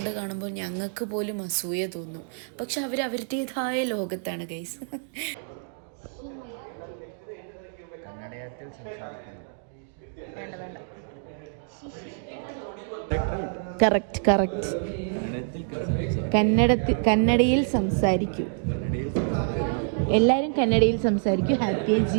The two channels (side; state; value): left; silent; digital silence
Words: കാണുമ്പോൾ ഞങ്ങൾക്ക് പോലും അസൂയ തോന്നും. പക്ഷെ അവരുടേതായ ലോകത്താണ് ഗൈസ്. കന്നഡത്തിൽ സംസാരിക്കണം. വേണ്ട കറക്റ്റ് കന്നഡയിൽ സംസാരിക്കൂ. എല്ലാവരും കന്നഡയിൽ സംസാരിക്കൂ. ഹാപ്പിയായി